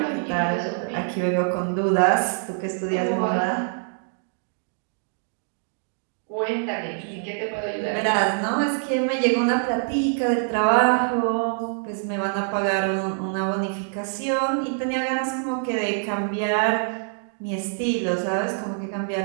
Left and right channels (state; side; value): silent; left; 62 dB below the other